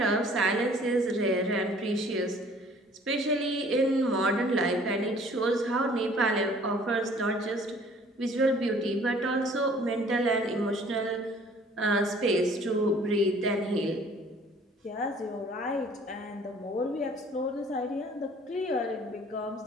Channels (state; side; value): normal; both; correlation 0.54